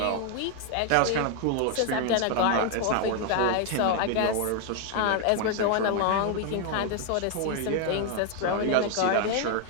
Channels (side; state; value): both; different; correlation 0.00